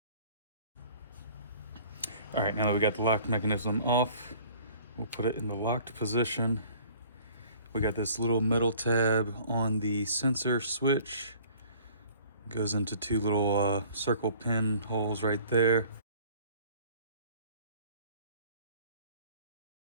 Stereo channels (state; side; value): inverted; both; correlation -0.51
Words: All right, now that we got the lock mechanism off, we'll put it in the locked position. We got this little metal tab on the sensor switch. Goes into two little circle pin holes right there.